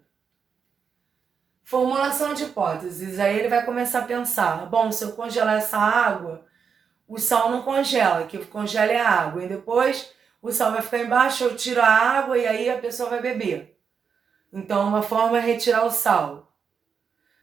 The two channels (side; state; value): left; quieter; 6.4 dB